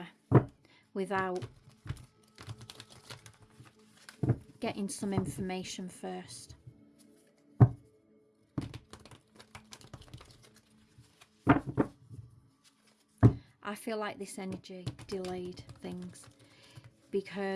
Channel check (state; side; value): identical; both; correlation 1.00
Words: without getting some information first. I feel like this energy delayed things